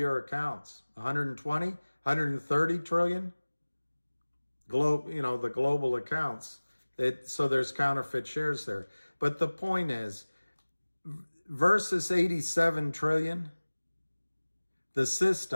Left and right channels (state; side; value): inverted; both; correlation -1.00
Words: accounts? 120, 130 trillion? The global accounts. So there's counterfeit shares there. But the point is, versus 87 trillion, the